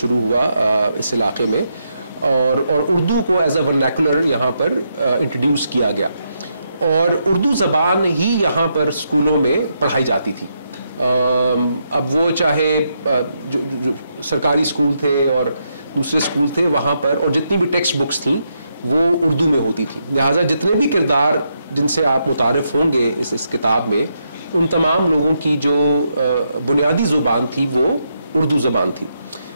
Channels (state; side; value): inverted; both; correlation -0.80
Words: ہوا اس علاقے میں، اور اردو کو ایز اے ورنیکولر یہاں پر انٹروڈیوس کیا گیا، اور اردو زبان ہی یہاں پر اسکولوں میں پڑھائی جاتی تھی. اب وہ چاہے جو سرکاری اسکول تھے اور دوسرے اسکول تھے وہاں پر، اور جتنی بھی ٹیکسٹ بکس تھیں وہ اردو میں ہوتی تھی. لہٰذا جتنے بھی کردار جن سے آپ متعارف ہوں گے اس کتاب میں، ان تمام لوگوں کی جو بنیادی زبان تھی وہ اردو زبان تھی.